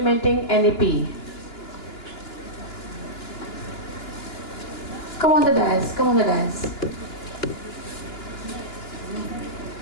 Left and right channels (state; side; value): late; right; 2.9 ms